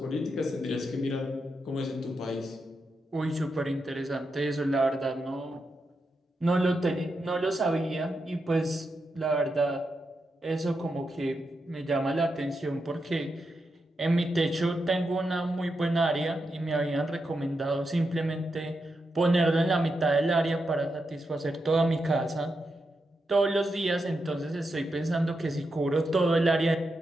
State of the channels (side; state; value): both; normal; correlation 0.86